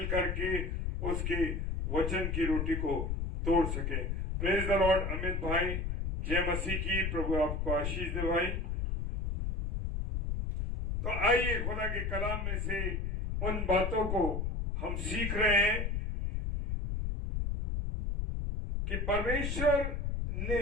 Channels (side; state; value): left; noise; rumble, 1 dB below the sound